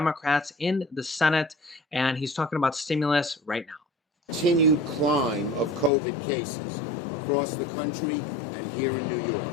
in the Senate, and he's talking about stimulus right now. Continued climb of COVID cases across the country and here in New York.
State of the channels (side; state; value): right; drops out; at 5.9 s